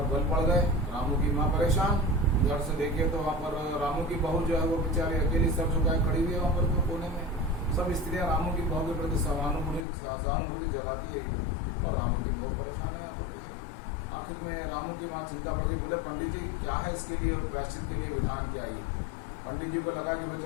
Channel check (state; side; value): drops out; right; at 9.9 s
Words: बल पड़ गए। रामू की माँ परेशान। घर से देखिए तो वहाँ पर रामू की बहू जो है वो बेचारी अकेली सर झुकाए खड़ी हुई है वहाँ पर कोने में। सब स्त्रियाँ रामू की बहू के प्रति सहानुभूति जगाती है और रामू की बहू परेशान है यहाँ पर। आखिर में रामू की माँ चिंता पड़ गई। बोले पंडित जी क्या है इसके लिए प्रायश्चित के लिए विधान क्या है? पंडित जी को लगा कि भाई